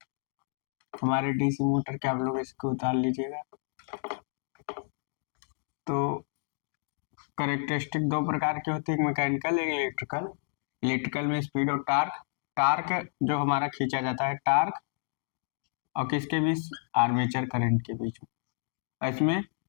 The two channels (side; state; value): right; silent; digital silence